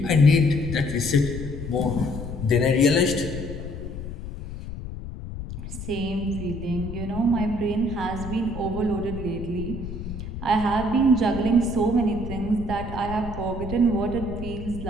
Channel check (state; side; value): noise; left; rumble, 9 dB below the sound